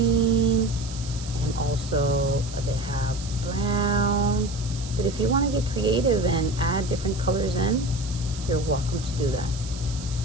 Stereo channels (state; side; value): noise; right; hiss, 14 dB below the sound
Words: and also they have brown. But if you want to get creative and add different colors in, you're welcome to do that.